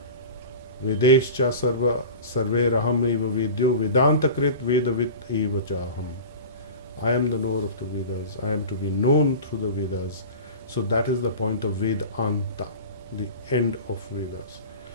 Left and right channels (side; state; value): both; inverted; correlation -0.35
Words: Vedescha sarve raham eva vedyo vedantakrit vedavit eva chaham. I am the knower of the Vedas. I am to be known through the Vedas. So that is the point of Vedanta, the end of Vedas.